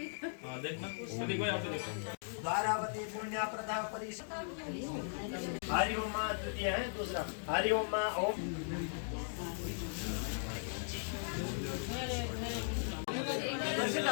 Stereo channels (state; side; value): silent; right; digital silence